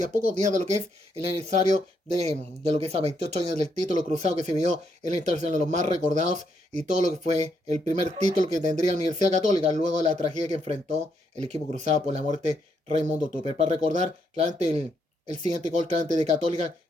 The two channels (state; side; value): normal; both; correlation 0.76